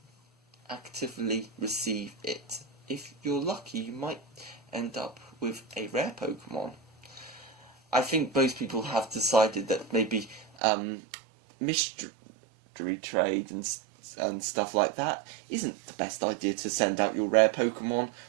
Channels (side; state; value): left; drops out; at 10.5 s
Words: receive it. If you're lucky, you might end up with a rare Pokemon. I think most people have decided that maybe mystery trade and stuff like that isn't the best idea to send out your rare Pokemon,